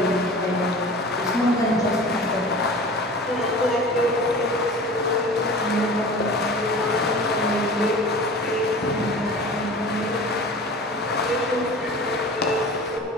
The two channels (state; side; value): normal; both; correlation 0.39